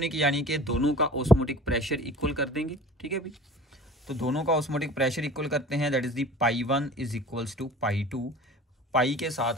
यानी कि दोनों का ऑस्मोटिक प्रेशर इक्वल कर देंगे। ठीक है भी, तो दोनों का ऑस्मोटिक प्रेशर इक्वल करते हैं, that is the π1 is equals to π2। Pi के साथ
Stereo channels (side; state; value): both; normal; correlation 0.42